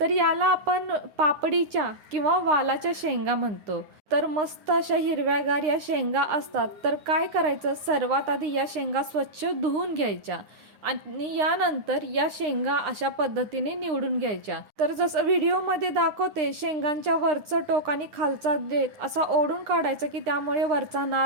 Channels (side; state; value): left; late; 9.8 ms